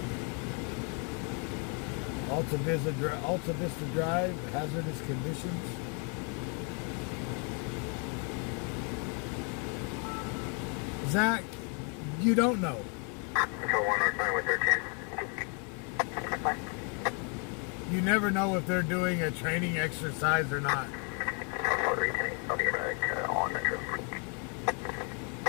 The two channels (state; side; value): quieter; right; 37.6 dB